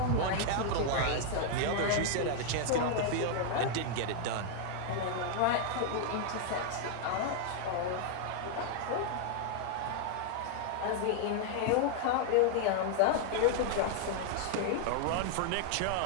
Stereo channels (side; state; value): both; different; correlation 0.00